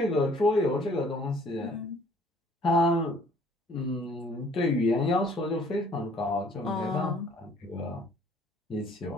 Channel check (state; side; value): normal; both; correlation 0.58